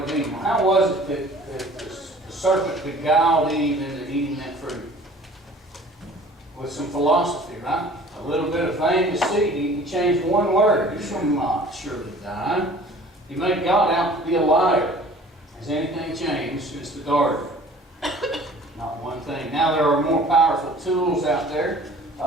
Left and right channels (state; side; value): normal; both; correlation 0.49